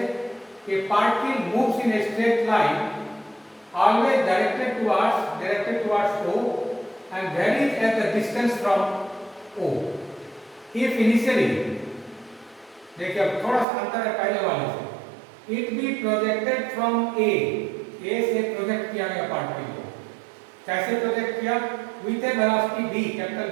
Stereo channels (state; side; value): drops out; left; at 13.7 s